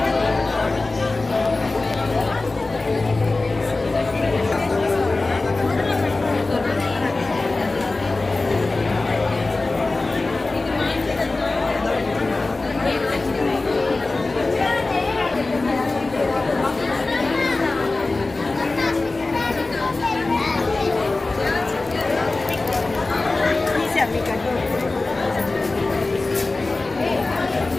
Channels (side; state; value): right; quieter; 3.3 dB